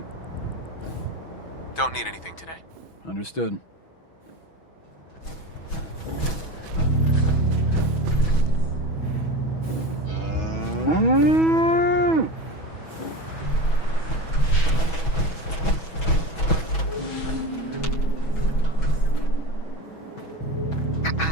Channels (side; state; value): right; late; 6.2 ms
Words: Don't need anything today. Understood.